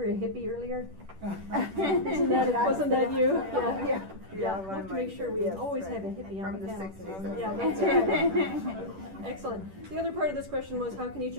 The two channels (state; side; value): late; left; 10 ms